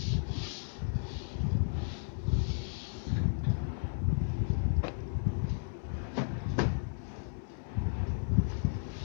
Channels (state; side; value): silent; right; digital silence